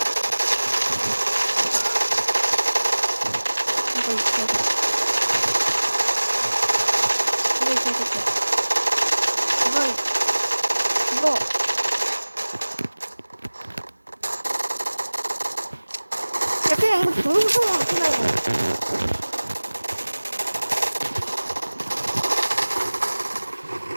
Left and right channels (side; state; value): both; inverted; correlation -1.00